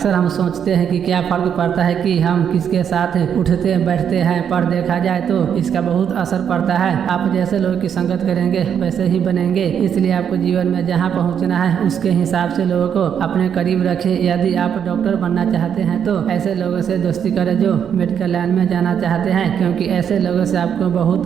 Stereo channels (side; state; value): left; quieter; 8.2 dB